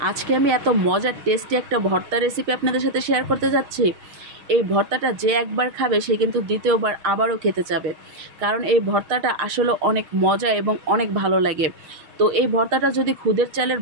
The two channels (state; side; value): late; left; 6.5 ms